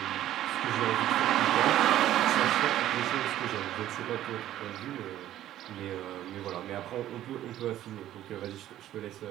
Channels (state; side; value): quieter; left; 12.8 dB